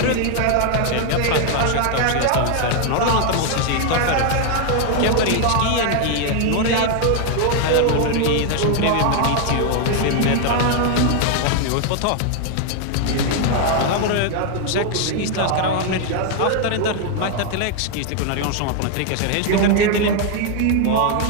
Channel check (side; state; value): both; different; correlation 0.00